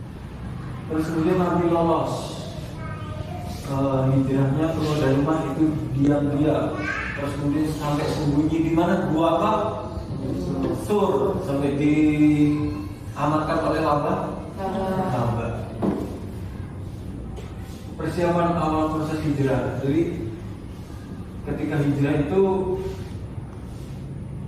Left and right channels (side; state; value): both; identical; correlation 1.00